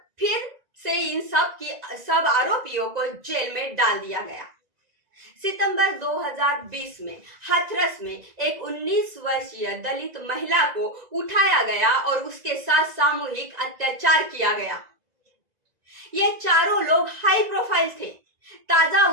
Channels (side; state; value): left; late; 2.0 ms